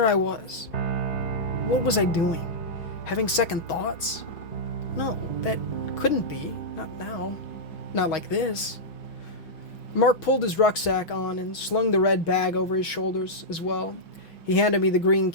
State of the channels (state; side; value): late; right; 6.2 ms